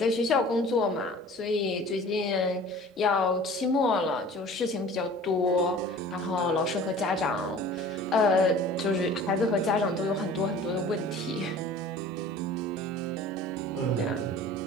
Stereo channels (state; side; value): normal; both; correlation 0.44